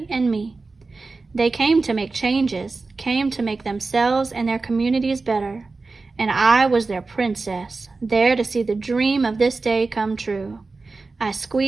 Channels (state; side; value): quieter; left; 3.8 dB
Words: and me. They came to make changes, came to make themselves and their communities better. And I was their princess, there to see the dream of this day come true. I